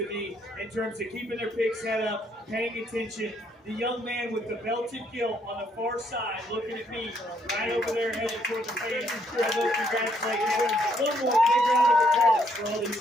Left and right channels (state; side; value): normal; both; correlation 0.71